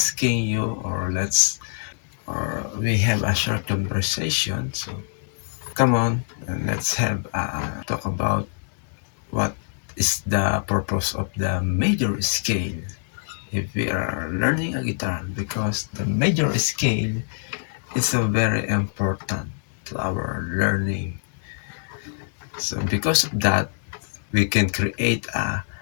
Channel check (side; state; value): right; silent; digital silence